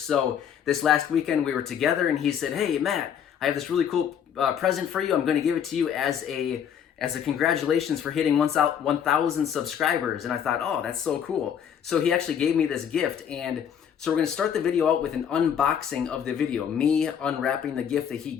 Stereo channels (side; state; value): right; quieter; 8.5 dB